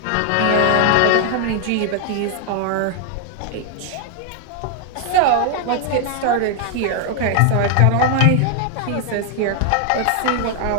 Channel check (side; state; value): both; different; correlation 0.00